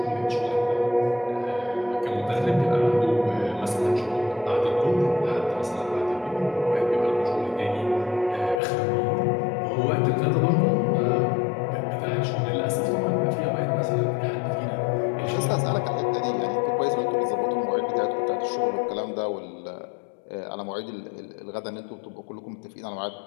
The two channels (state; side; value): drops out; right; at 8.6 s